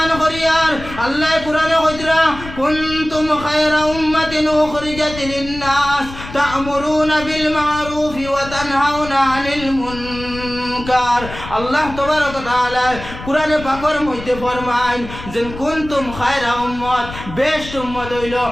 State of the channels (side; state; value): left; noise; rumble, 12 dB below the sound